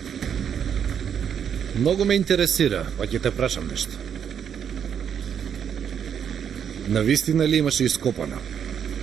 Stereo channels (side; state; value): left; quieter; 8.1 dB